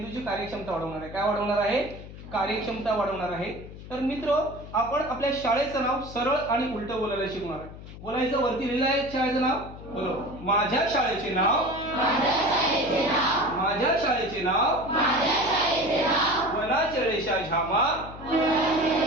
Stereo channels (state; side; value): noise; left; hum, 14 dB below the sound